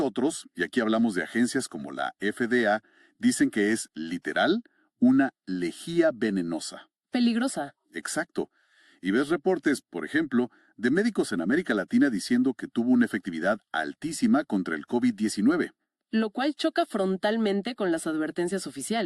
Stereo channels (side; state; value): both; identical; correlation 1.00